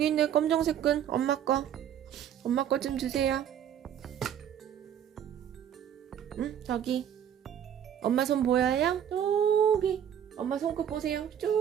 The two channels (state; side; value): quieter; left; 9.5 dB